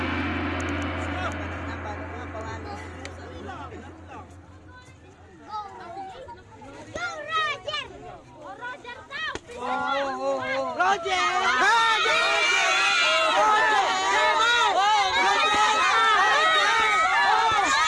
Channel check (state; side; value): identical; both; correlation 1.00